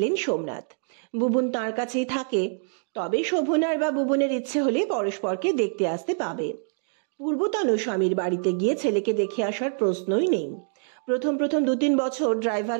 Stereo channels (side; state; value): left; silent; 59 dB below the other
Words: সোমনাথ। বুবুন তার কাছেই থাকে, তবে শোভনার বা বুবুনের ইচ্ছে হলে পরস্পরকে দেখতে আসতে পাবে। পূর্বতন স্বামীর বাড়িতে গিয়ে ছেলেকে দেখে আসার প্রশ্নই নেই। প্রথম 2-3 বছর